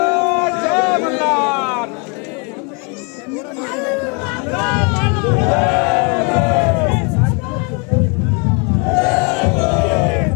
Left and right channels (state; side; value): quieter; right; 34.2 dB